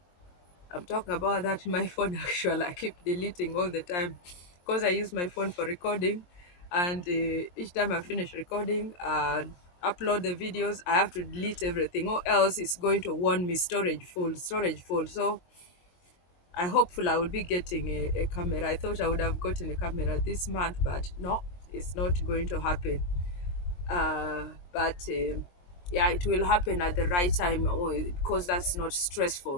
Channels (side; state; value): right; late; 23 ms